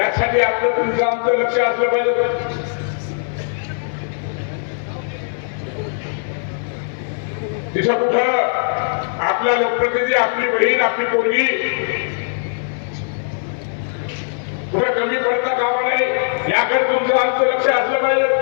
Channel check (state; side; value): silent; right; 58 dB below the other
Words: आपलं तुमचं आमचं लक्ष असलं पाहिजे. तिथं कुठं आपला लोकप्रतिनिधी, आपली बहीण, आपली पोरगी कुठं कमी पडता कामा नये, याकडे तुमचं आमचं लक्ष असलं पाहिजे.